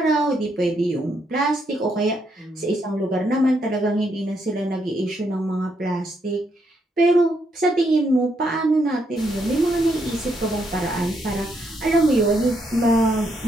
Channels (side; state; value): both; normal; correlation 0.76